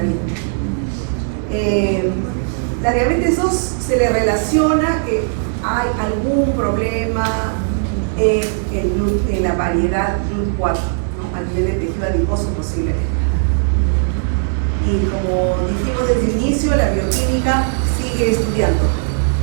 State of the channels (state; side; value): silent; left; 57 dB below the other